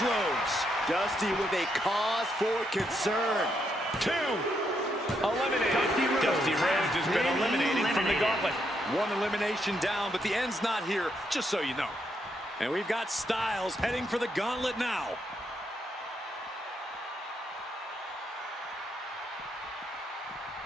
Dusty with a cause for concern. 2. Eliminated. Dusty Rhodes has been eliminated from the gauntlet. 1 elimination down, but the end's not here, just so you know. And we've got Styles heading for the gauntlet now.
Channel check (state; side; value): normal; both; correlation 0.78